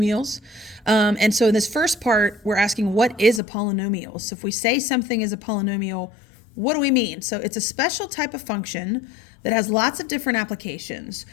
And so in this first part, we're asking what is a polynomial? So if we say something is a polynomial, what do we mean? So it's a special type of function that has lots of different applications.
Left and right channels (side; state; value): right; drops out; at 3.4 s